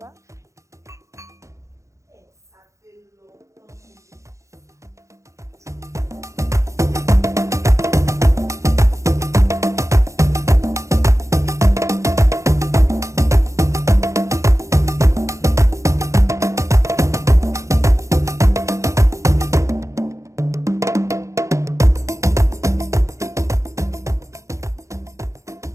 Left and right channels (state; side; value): late; left; 0.15 ms